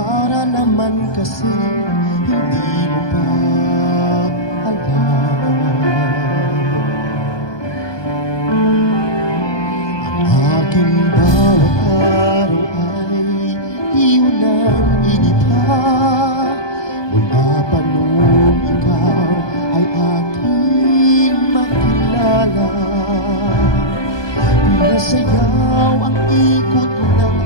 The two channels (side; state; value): right; late; 1.2 ms